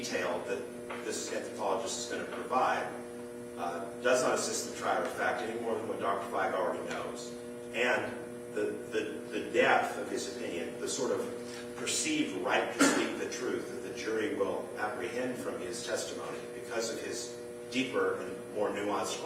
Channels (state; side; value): identical; both; correlation 1.00